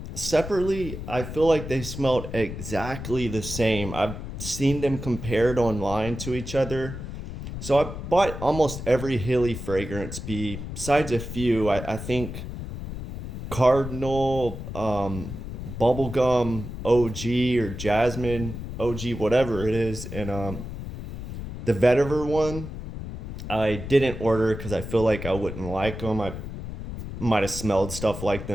separately, I feel like they smelled exactly the same. I've seen them compared online to each other. So I bought almost every Heeley fragrance besides a few. I think Cardinal, Bubblegum OG or Jasmine OG, whatever it is, and the vetiver one I didn't order because I feel like I wouldn't like them. I might have smelled stuff like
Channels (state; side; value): noise; left; rumble, 8 dB below the sound